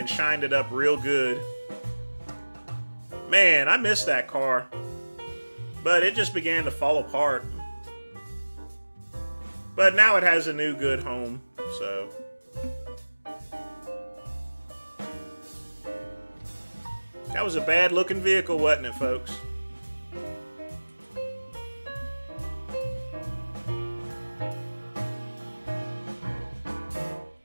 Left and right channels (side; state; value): both; inverted; correlation -1.00